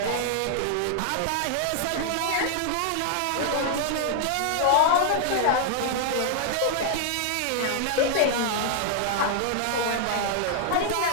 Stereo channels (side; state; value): both; different; correlation 0.00